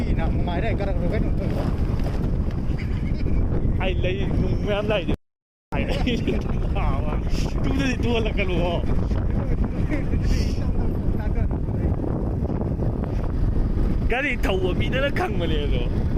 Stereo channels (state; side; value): identical; both; correlation 1.00